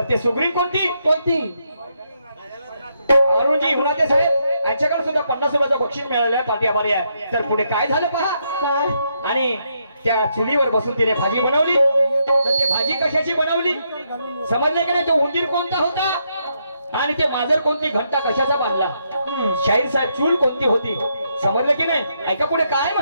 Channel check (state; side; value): inverted; both; correlation -0.78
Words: ते सुग्रीन कोणती? कोणती? अरुणजी हुनाते साहेब यांच्याकडे सुद्धा 50 रुपयाचं बक्षीस मिळालं आहे, पाठी आभारी आहे. तर पुढे काय झालं पहा. काय? आणि त्या चुलीवर बसून तिने भाजी बनवली. तर ते भाजी कशाची बनवली समजलं का नाही? तो उंदीर कोणता होता आणि ते मांजर कोणती, घंटा कशाचा बांधला? शाहीर साहेब चूल कोणती होती समजलं की नाही? ऐका पुढे काय